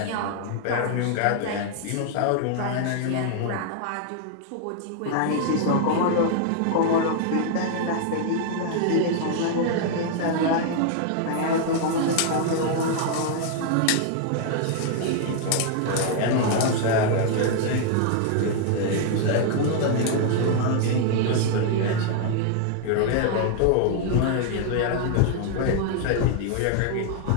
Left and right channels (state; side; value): different; both; correlation 0.00